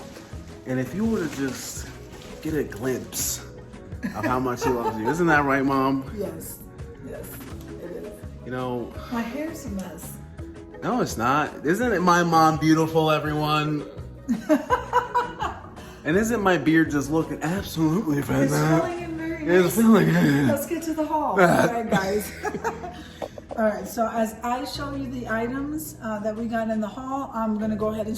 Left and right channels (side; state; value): both; identical; correlation 1.00